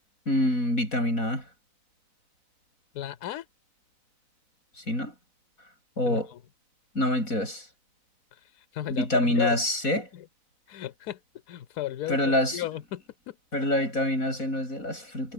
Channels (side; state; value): right; late; 4.1 ms